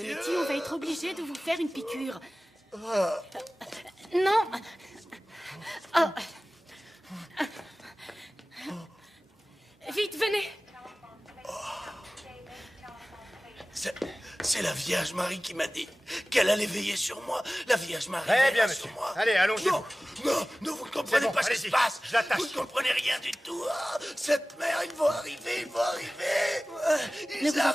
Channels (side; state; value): both; normal; correlation 0.98